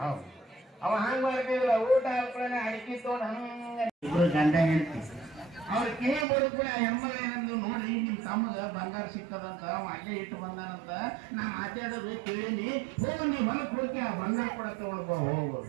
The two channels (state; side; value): drops out; left; at 6.2 s